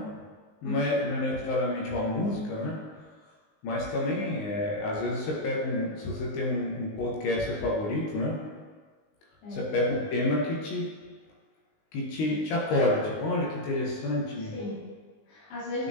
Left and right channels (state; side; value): late; right; 19 ms